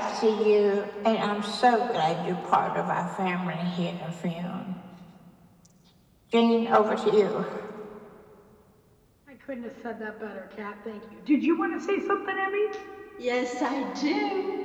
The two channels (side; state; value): both; identical; correlation 1.00